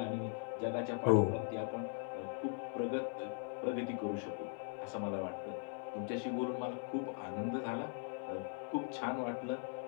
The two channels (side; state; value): right; silent; 51 dB below the other